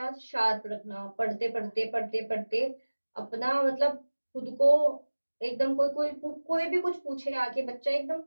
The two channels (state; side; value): inverted; both; correlation -1.00